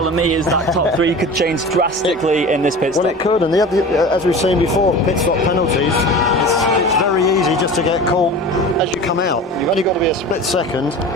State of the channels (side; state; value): both; normal; correlation 0.35